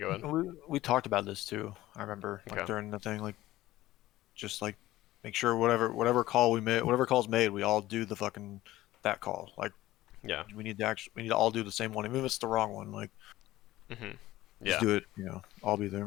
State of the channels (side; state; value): right; quieter; 16.0 dB